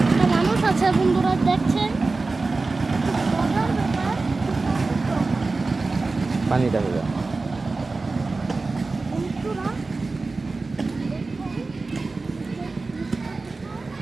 একটা মানুষ আছে বন্ধুরা দেখছেন। মজার ব্যাপার পানিটা হবে বন্ধুরা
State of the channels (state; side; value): quieter; left; 3.7 dB